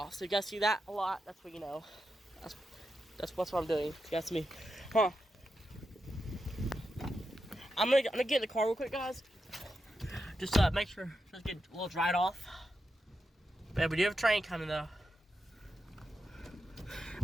So if you guys see that a lot, that's what you know. That's what I'm doing. You guys see me. Huh. I'm gonna get in the car real quick, guys. Just make sure just get a little dried off. But yeah, we do have a train coming though.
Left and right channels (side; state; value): both; normal; correlation 0.88